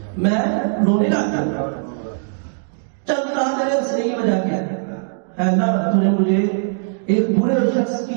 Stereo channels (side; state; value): left; silent; digital silence